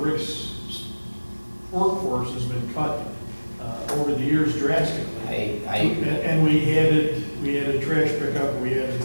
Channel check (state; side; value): inverted; both; correlation -1.00